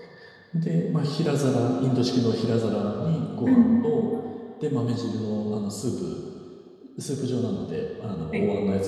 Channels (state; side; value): identical; both; correlation 1.00